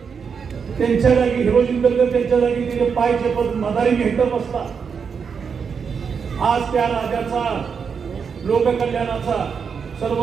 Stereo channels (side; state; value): left; quieter; 6.3 dB